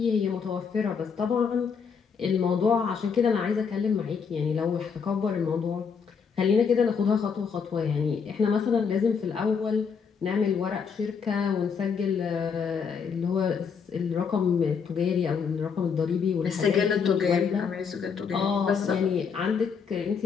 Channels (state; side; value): quieter; right; 6.2 dB